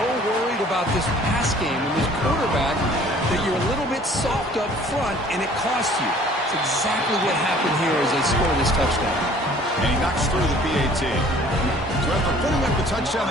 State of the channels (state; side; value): normal; both; correlation 0.53